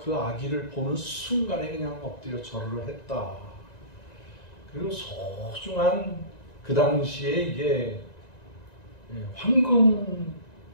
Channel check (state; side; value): late; right; 1.9 ms